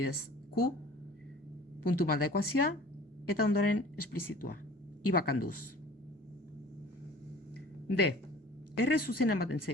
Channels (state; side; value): normal; both; correlation 0.46